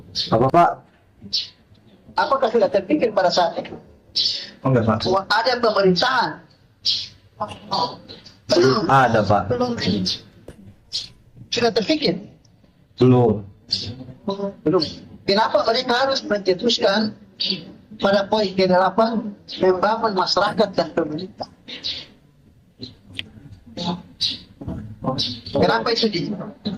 Apa Pak? Apakah sudah terpikir pada saat itu? Enggak Pak. Bahwa ada pemerintahan? Ada Pak. Belum. Sudah terpikir? Belum. Belum. Kenapa mereka harus mencetuskan pada poin ke-8 membangun masyarakat dan pemerintah? Kenapa itu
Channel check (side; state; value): both; identical; correlation 1.00